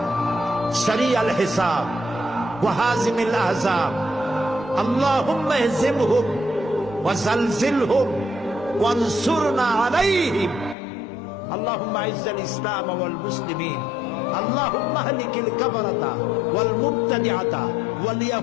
সারিয়াল হিসাব ওয়া হাজিমিল আহজাব, আল্লাহুম্মা ইহজিমহুম ওয়া জালজিলহুম ওয়ানসুরনা আলাইহিম, আল্লাহুম্মা আইজ্জাল ইসলাম ওয়াল মুসলিমিন, আল্লাহুম্মা আহলিকিল কাফারাতা ওয়াল মুবতাদিআতা ওয়াল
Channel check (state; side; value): drops out; right; at 10.8 s